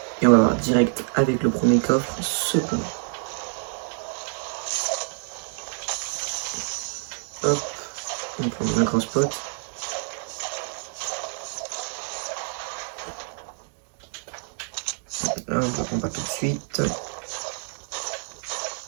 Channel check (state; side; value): silent; left; 60 dB below the other